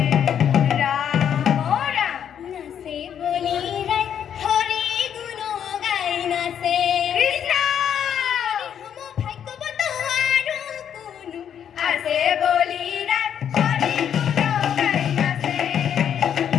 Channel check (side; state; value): right; quieter; 8.9 dB